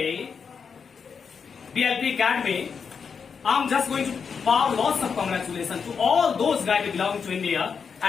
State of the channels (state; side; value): quieter; right; 6.1 dB